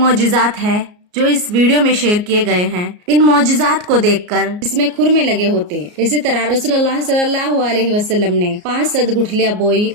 है जो इस वीडियो में शेयर किए गए हैं। इन मौजिज़ात को देखकर इसमें खुरमे लगे होते। इसी तरह रसूलुल्लाह सल्लल्लाहु अलैहि वसल्लम ने 5 सद गुठलियां बोई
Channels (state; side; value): late; left; 34 ms